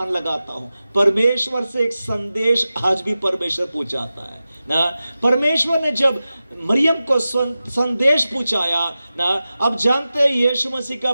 लगाता हूं। परमेश्वर से एक संदेश आज भी परमेश्वर पूछाता है ना। परमेश्वर ने जब मरियम को संदेश पूछाया ना, अब जानते हैं यीशु मसीह का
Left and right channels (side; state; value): both; inverted; correlation -0.94